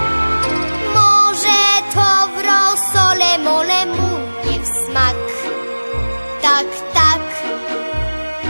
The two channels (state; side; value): inverted; both; correlation -1.00